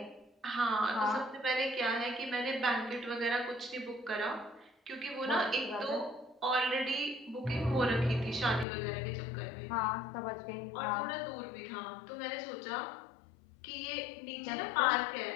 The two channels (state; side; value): drops out; right; at 8.7 s